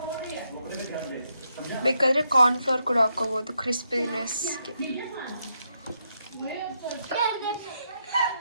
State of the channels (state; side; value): inverted; both; correlation -0.80